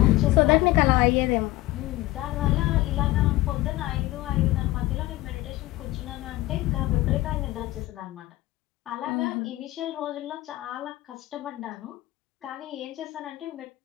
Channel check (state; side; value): quieter; right; 18.0 dB